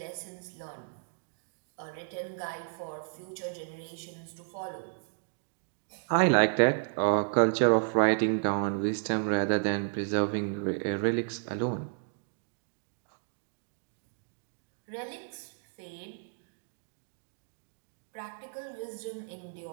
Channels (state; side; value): silent; left; digital silence